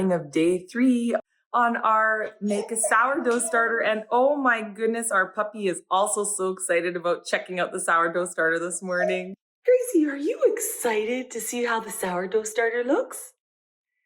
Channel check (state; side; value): identical; both; correlation 1.00